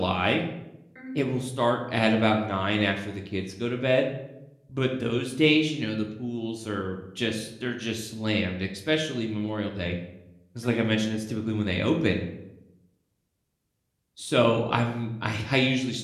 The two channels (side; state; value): both; identical; correlation 1.00